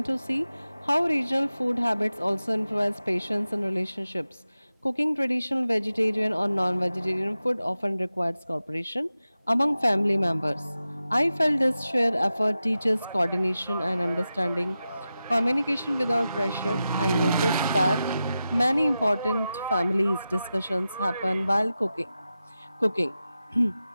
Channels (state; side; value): inverted; both; correlation -0.92